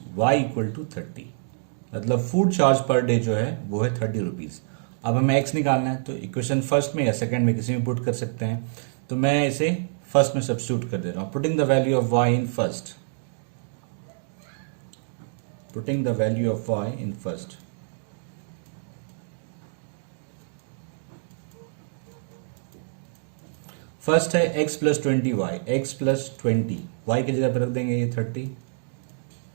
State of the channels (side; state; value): left; silent; digital silence